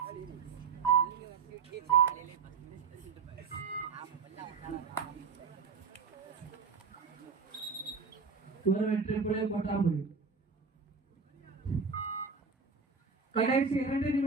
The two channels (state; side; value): quieter; left; 5.3 dB